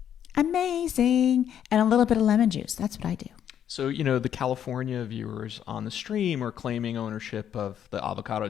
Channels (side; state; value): right; quieter; 9.5 dB